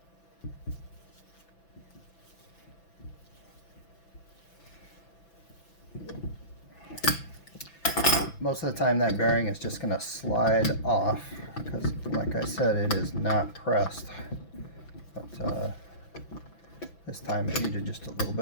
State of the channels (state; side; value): late; right; 6.0 ms